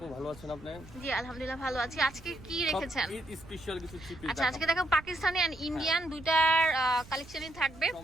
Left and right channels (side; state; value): right; noise; rumble, 19 dB below the sound